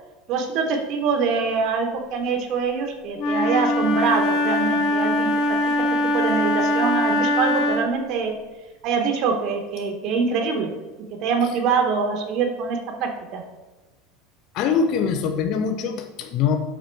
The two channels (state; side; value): normal; both; correlation 0.38